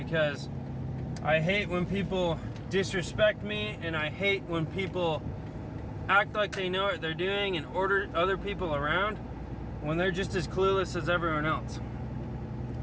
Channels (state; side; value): identical; both; correlation 1.00